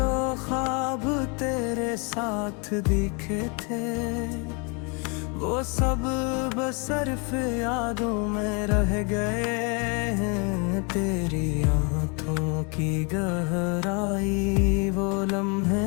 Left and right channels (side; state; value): right; quieter; 33.8 dB